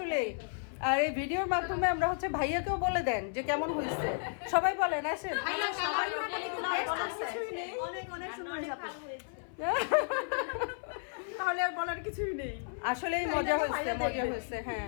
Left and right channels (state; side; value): silent; right; 56 dB below the other